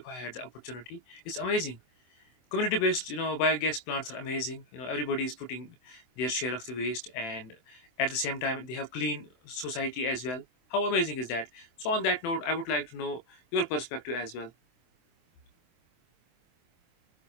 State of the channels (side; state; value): right; late; 24 ms